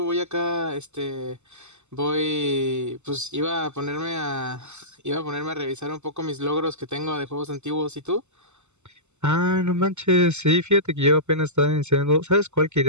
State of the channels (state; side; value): late; left; 0.83 ms